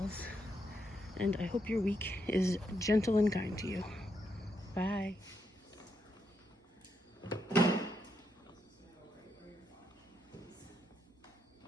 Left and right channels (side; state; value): both; normal; correlation 0.81